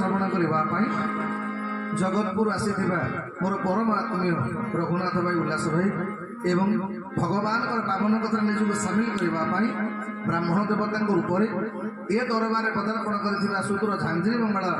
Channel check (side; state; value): both; identical; correlation 1.00